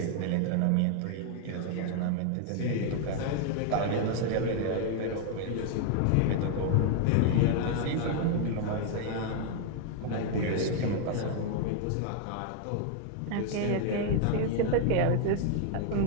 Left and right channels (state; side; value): different; both; correlation 0.00